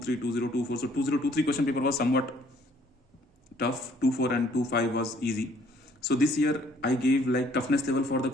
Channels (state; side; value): normal; both; correlation 0.61